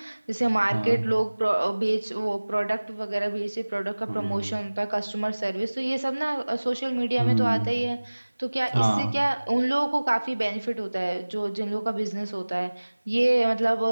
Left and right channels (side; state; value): both; inverted; correlation -1.00